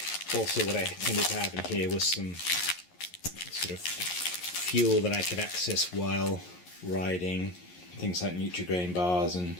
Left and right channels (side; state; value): right; late; 11 ms